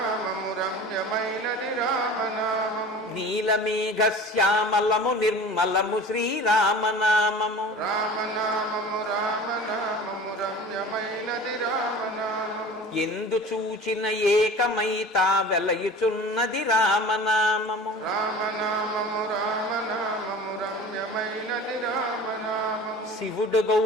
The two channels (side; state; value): both; normal; correlation 0.39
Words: రమ్యమైనది రామనామము, నీలమేఘ శ్యామలము నిర్మలము శ్రీరామనామము. రామనామము రామనామము రమ్యమైనది రామనామము, ఎందు చూచిన ఏకమైతా వెలయుచున్నది రామనామము. రామనామము రామనామము రమ్యమైనది రామనామము, శివుడు